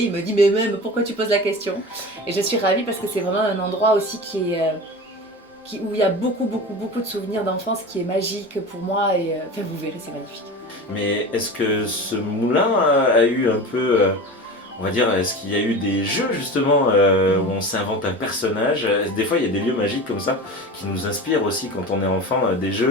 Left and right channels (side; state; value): both; normal; correlation 0.31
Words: il me dit mais même pourquoi tu poses la question? Et je suis ravie parce que c'est vraiment un endroit aussi où il y a beaucoup de souvenirs d'enfance, qui est magique pour moi, et enfin vous verrez, c'est magnifique. Mais est-ce que ce moulin a eu un peu... on va dire, est-ce qu'il y a eu des jeux justement où on s'invente un personnage? Des fois, il y a des lieux magiques comme ça qui nous inspirent aussi quand on est enfant, des